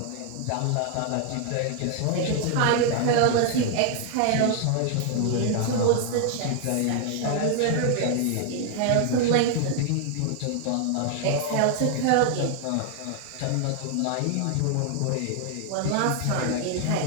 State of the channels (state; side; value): different; both; correlation 0.00